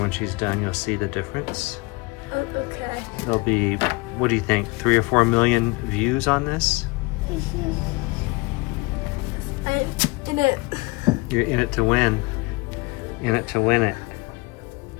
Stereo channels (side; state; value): right; quieter; 25.1 dB